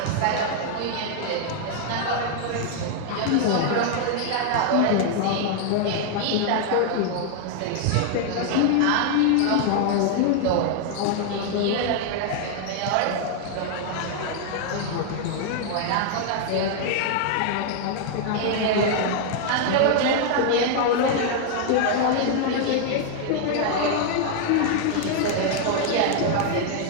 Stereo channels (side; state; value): both; different; correlation 0.00